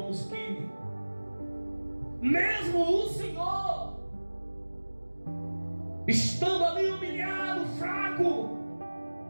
que mesmo o Senhor, estando ali humilhado, fraco,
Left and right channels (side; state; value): both; inverted; correlation -1.00